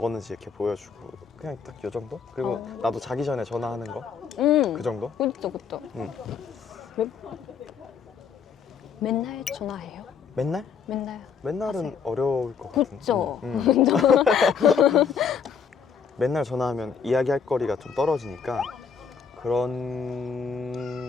이렇게 보여주고 그냥 딱 요 정도? 그리고 나도 자기 전에 전화하는 거 그 정도? 그렇죠. 맨날 전화해요? 맨날? 맨날은 하세요. 어려울 것 같은데. 그렇죠. 맨날 전화하면 이야기할 거리가 좀 떨어지니까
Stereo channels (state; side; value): quieter; right; 6.4 dB